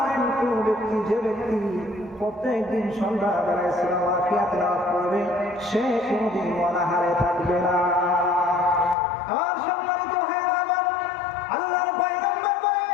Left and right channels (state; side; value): drops out; right; at 9.0 s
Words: কোন ব্যক্তি, যে ব্যক্তি প্রত্যেক দিন সন্ধ্যাবেলায় সূরা ওয়াকিয়া তেলাওয়াত করবে সে কোনদিন অনাহারে থাকবে না। আর সম্মানিত ভাইরা আমার, আল্লাহর পয়গম্বর বলেন,